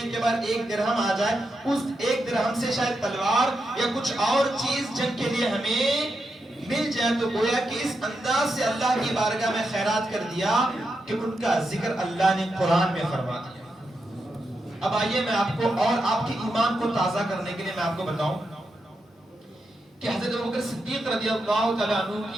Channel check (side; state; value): both; normal; correlation 0.85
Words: کے بعد 1 درہم آ جائے, اس 1 درہم سے شاید تلوار یا کچھ اور چیز جنگ کے لیے ہمیں مل جائے. تو گویا کہ اس انداز سے اللہ کی بارگاہ میں خیرات کر دیا کہ ان کا ذکر اللہ نے قرآن میں فرما دیا. اب آئیے میں آپ کو اور آپ کے ایمان کو تازہ کرنے کے لیے میں آپ کو بتاؤں کہ حضرت ابوبکر صدیق رضی اللہ تعالیٰ عنہ